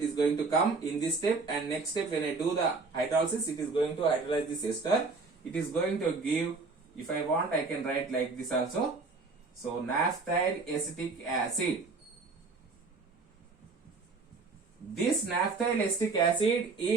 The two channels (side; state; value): left; quieter; 4.0 dB